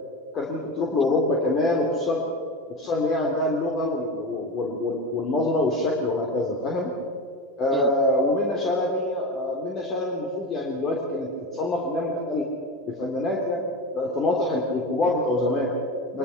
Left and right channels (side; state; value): both; normal; correlation 0.24